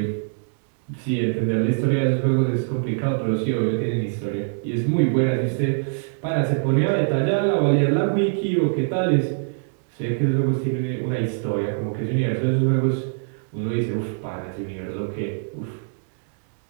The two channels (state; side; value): silent; left; digital silence